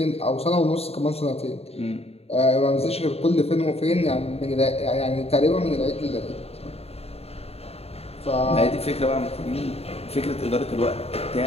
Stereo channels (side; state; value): right; late; 0.29 ms